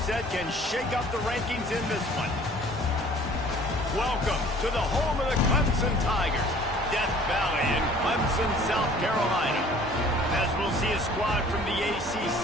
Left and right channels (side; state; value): both; normal; correlation 0.51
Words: can shake up the rankings in this one. Welcome to the home of the Clemson Tigers, Death Valley in Clemson, South Carolina. As we'll see a squad from the